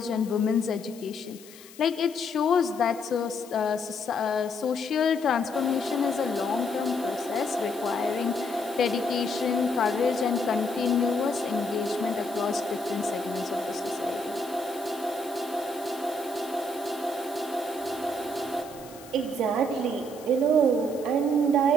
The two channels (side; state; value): left; noise; hiss, 20 dB below the sound